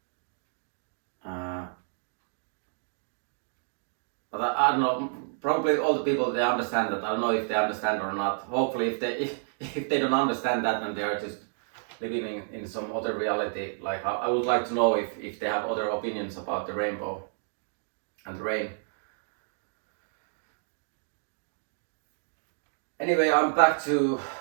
But I don't know. Probably all the people they understand that. I don't know if they understand or not. Hopefully, if they don't understand that, then they are just living in some other reality. Like I would like to know if they have other opinions about the rainbow and the rain. Anyway, I'm back to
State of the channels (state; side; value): silent; left; digital silence